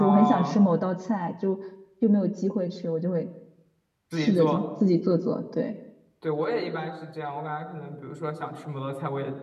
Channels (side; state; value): both; identical; correlation 1.00